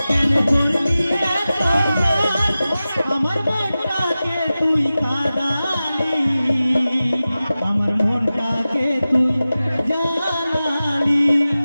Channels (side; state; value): both; inverted; correlation -0.95